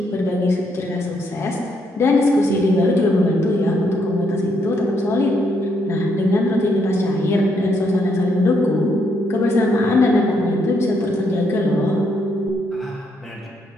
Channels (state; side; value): normal; both; correlation 0.75